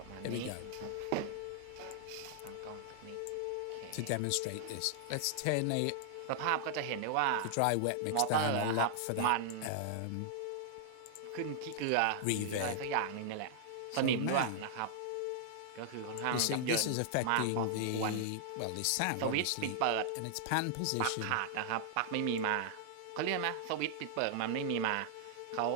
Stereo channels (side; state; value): both; different; correlation -0.01